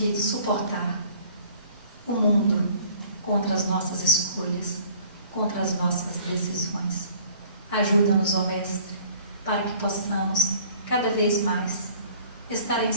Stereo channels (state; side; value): inverted; both; correlation -0.53